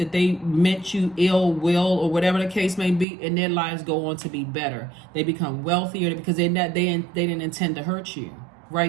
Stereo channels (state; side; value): drops out; left; at 3.1 s